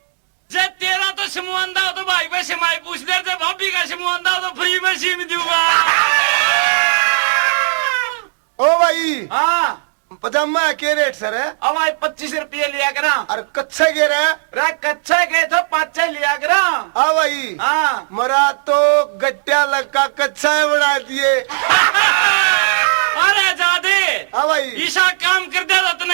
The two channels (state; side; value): silent; left; digital silence